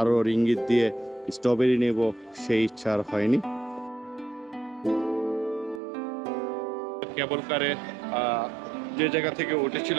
রিঙ্গিত দিয়ে স্ট্রবেরি নেব সেই ইচ্ছা আর হয়নি। কেবল কারে যে জায়গা থেকে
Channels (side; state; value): left; drops out; at 5.8 s